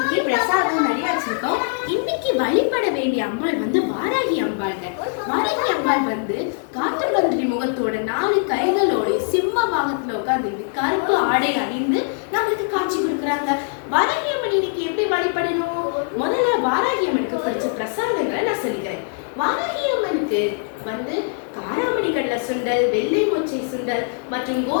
பிரசாதம் நிறைய வச்சிருக்கோம். இன்னைக்கு வழிபட வேண்டிய அம்பாள் வந்து வாராகி அம்பாள்ங்க. வாராகி அம்பாள் வந்து காட்டு மந்திரி முகத்தோட 4 கைகளோட சிம்ம வாகனத்துல உட்கார்ந்து கருப்பு ஆடை அணிந்து நம்மளுக்கு காட்சி கொடுக்குறாங்க. வாராகி அம்மன் இன்னைக்கு எப்படி வழிபடணும்? முதல்ல வாராகி அம்மனுக்கு பிடிச்ச பிரசாதங்களை நான் சொல்லிக்கிறேன். வாராகி அம்மனுக்கு வந்து காராமணி கடலை சுண்டல், வெள்ளை மொச்சை சுண்டல் மற்றும்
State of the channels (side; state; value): right; silent; 56 dB below the other